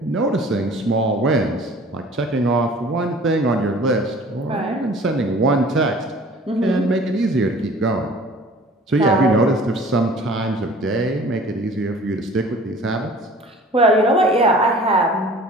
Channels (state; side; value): normal; both; correlation 0.47